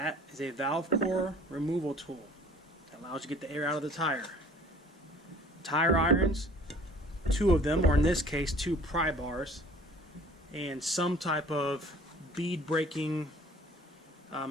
is a valve core removal tool that allows you to get the air out of the tire. Tire irons, 2 of them, or in this case 2 pry bars, and some type of bead breaking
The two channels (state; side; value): normal; both; correlation 0.50